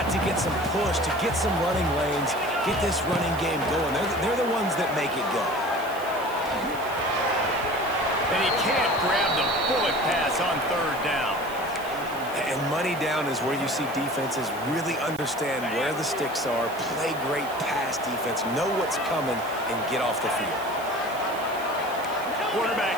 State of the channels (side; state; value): right; noise; hiss, 18 dB below the sound